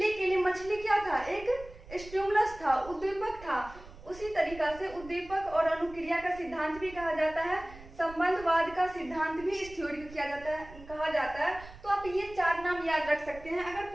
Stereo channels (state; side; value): noise; right; rumble, 17 dB below the sound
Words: के लिए मछली क्या था, एक स्टिमुलस था, उद्दीपक था। उसी तरीका से उद्दीपक और अनुक्रिया का सिद्धांत भी कहा जाता है। संबंधवाद का सिद्धांत भी इस थ्योरी को कहा जाता है। तो आप ये चार नाम याद रख सकते हैं, अगर